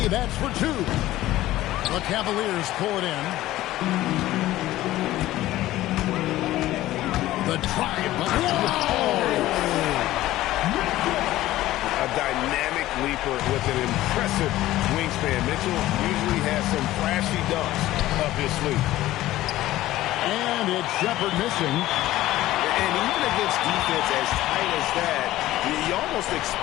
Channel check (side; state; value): right; quieter; 15.6 dB